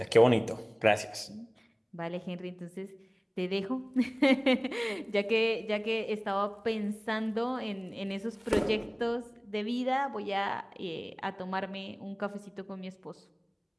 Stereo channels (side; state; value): both; identical; correlation 1.00